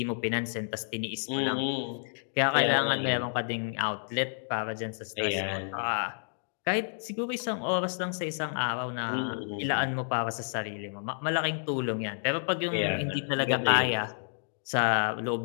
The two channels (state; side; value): silent; right; digital silence